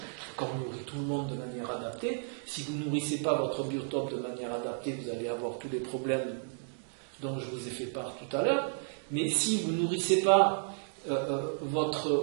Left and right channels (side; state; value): left; silent; digital silence